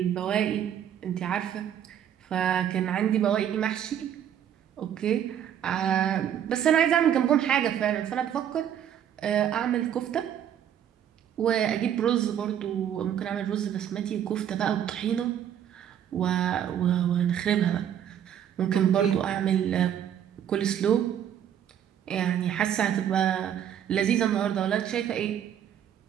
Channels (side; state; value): left; quieter; 9.8 dB